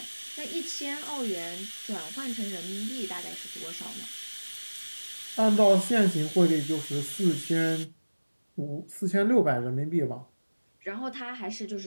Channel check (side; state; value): both; inverted; correlation -1.00